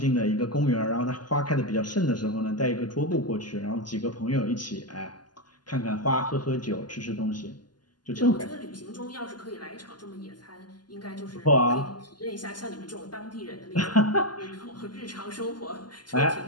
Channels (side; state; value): right; late; 0.71 ms